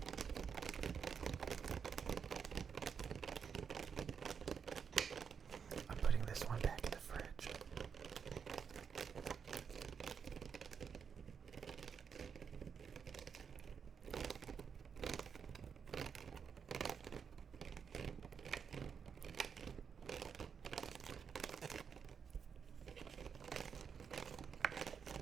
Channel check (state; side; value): quieter; left; 6.7 dB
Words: I'm putting this one back in the fridge.